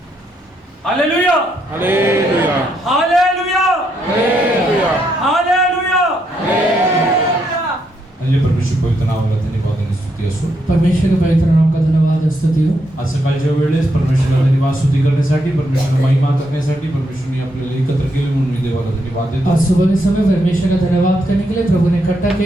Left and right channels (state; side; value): normal; both; correlation 0.78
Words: Hallelujah hallelujah hallelujah hallelujah hallelujah. म्हणजे परमेश्वर पवित्र नावाला धन्यवाद आणि स्तुती असो। परमेश्वर के पवित्र नाम का धन्यवाद स्तुति हो। आज सकाळच्या वेळेस परमेश्वराला धन्यवाद स्तुती करण्यासाठी, परमेश्वराला महिमा करण्यासाठी परमेश्वरने आपल्याला एकत्र केले म्हणून मी देवाला धन्यवाद देतो। आज सुबह के समय परमेश्वर का धन्यवाद करने के लिए प्रभु ने इकट्ठा